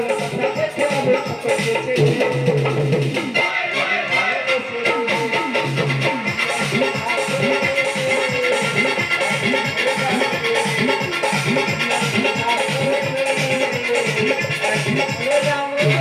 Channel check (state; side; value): identical; both; correlation 1.00